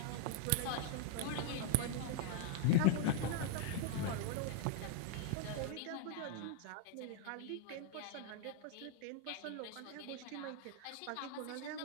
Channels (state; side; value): different; both; correlation 0.00